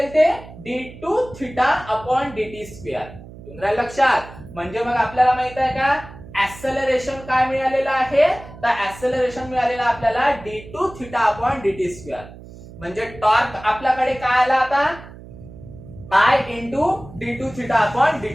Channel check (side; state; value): right; noise; hum, 17 dB below the sound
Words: ते? d2 theta upon dt square. तुमच्या लक्षात, म्हणजे मग आपल्याला माहित आहे का ऍक्सेलरेशन काय मिळालेलं आहे? तर ऍक्सेलरेशन मिळालेलं आपल्याला d2 theta upon dt square. म्हणजे टॉर्क आपल्याकडे काय आला आता? I into d2 theta upon